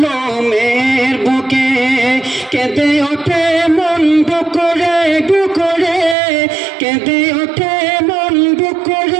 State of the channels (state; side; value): drops out; left; at 6.2 s